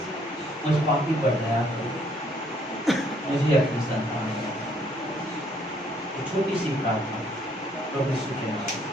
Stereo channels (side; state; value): both; normal; correlation 0.66